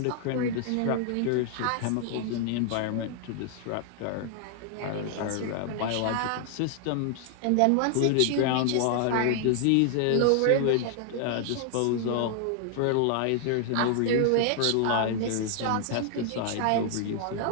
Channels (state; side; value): different; both; correlation 0.00